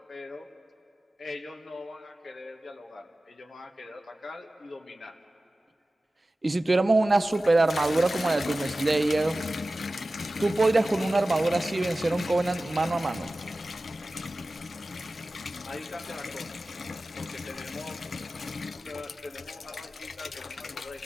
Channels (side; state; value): both; normal; correlation 0.96